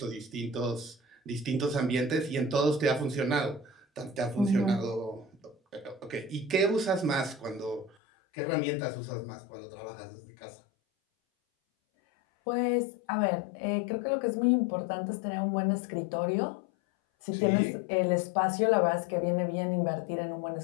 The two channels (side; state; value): right; drops out; at 8.0 s